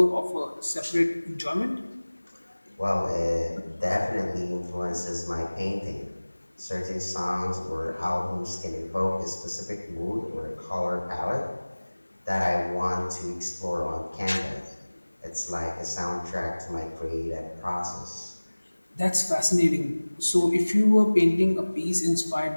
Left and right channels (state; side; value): inverted; both; correlation -1.00